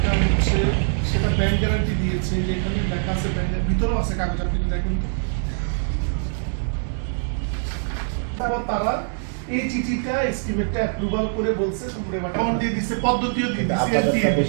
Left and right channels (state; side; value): silent; left; digital silence